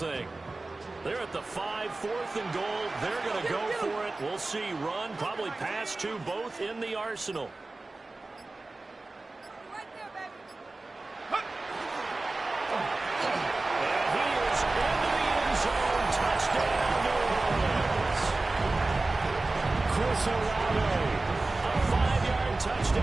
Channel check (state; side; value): quieter; left; 3.2 dB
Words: They're at the 5, 4th and goal. They're going to go for it. We'll see. Run, probably pass to both in the arsenal. Right there, baby. And he is into the end zone. Touchdown, New Orleans. Chris Olave, A 5-yard